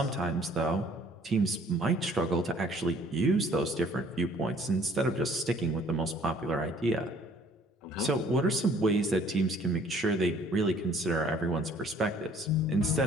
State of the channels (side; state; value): both; normal; correlation 0.57